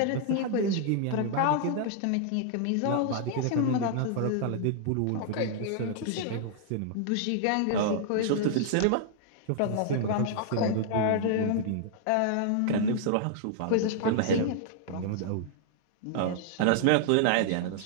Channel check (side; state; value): both; different; correlation -0.01